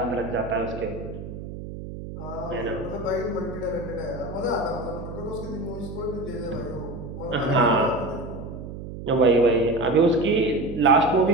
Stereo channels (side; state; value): right; noise; hum, 10 dB below the sound